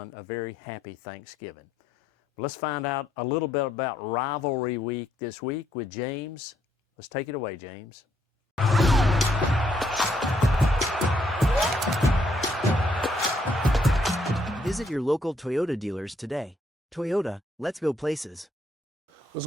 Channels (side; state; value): both; normal; correlation 0.72